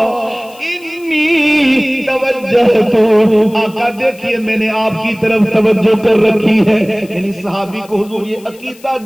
انی توجہت، آقا دیکھیے میں نے آپ کی طرف توجہ کر رکھی ہے۔ یعنی صحابی کو حضور یہ عقیدہ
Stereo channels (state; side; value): noise; left; hiss, 24 dB below the sound